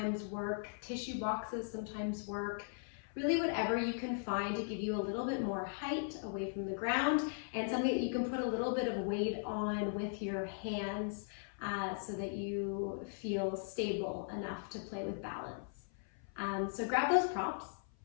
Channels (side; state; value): right; silent; 52 dB below the other